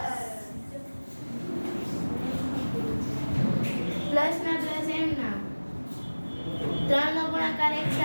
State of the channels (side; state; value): both; inverted; correlation -1.00